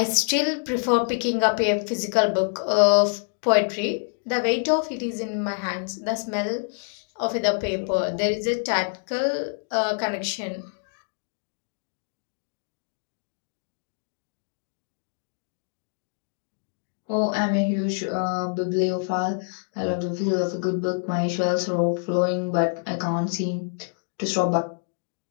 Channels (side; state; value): right; silent; digital silence